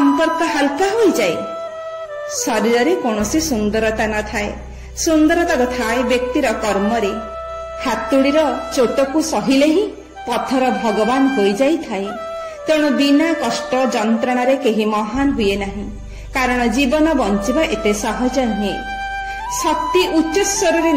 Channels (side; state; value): both; identical; correlation 1.00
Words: ହାଲକା ହୋଇଯାଏ। ଶରୀରରେ କୌଣସି ସୁନ୍ଦରତା ନଥାଏ, ସୁନ୍ଦରତା ଥାଏ ବ୍ୟକ୍ତିର କର୍ମରେ। ହାତୁଡ଼ିର ଚୋଟକୁ ସହିଲେ ହିଁ ପଥର ଭଗବାନ ହୋଇଯାଇଥାଏ। ତେଣୁ ବିନା କଷ୍ଟ ଯନ୍ତ୍ରଣାରେ କେହି ମହାନ ହୁଏ ନାହିଁ, କାରଣ ଜୀବନ ବଞ୍ଚିବା ଏତେ ସହଜ ନୁହେଁ। ଶକ୍ତି ଉଚ୍ଚସ୍ୱରରେ